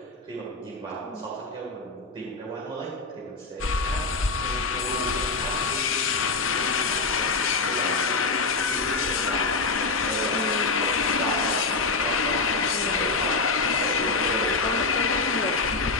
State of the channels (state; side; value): quieter; right; 4.1 dB